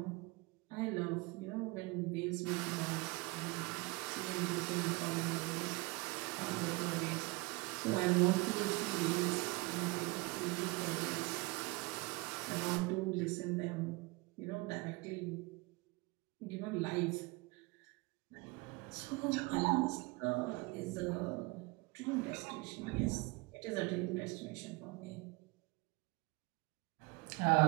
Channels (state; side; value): quieter; left; 25.4 dB